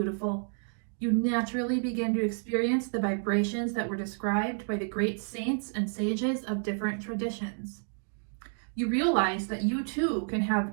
You naturally begin to experience the vibrations that were described by the great saints and sages of different traditions. You realize that you too can have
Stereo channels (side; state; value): left; silent; 58 dB below the other